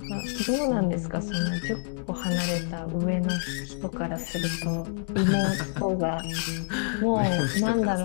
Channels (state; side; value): silent; right; 58 dB below the other